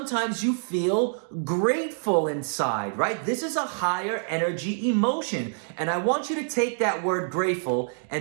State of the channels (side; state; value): left; silent; digital silence